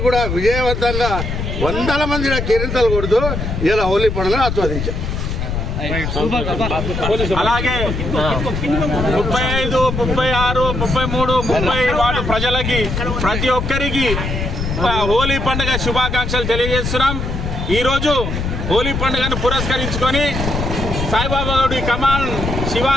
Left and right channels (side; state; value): left; noise; rumble, 3 dB below the sound